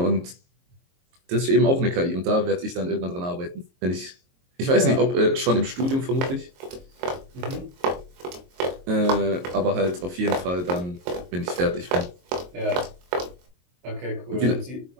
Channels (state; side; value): late; left; 22 ms